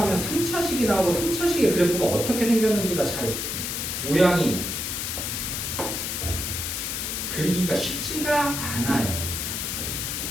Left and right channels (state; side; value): noise; left; hiss, 3 dB below the sound